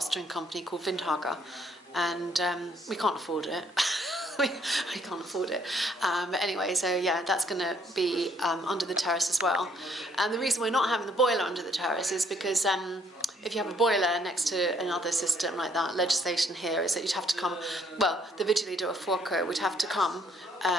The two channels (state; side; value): normal; both; correlation 0.66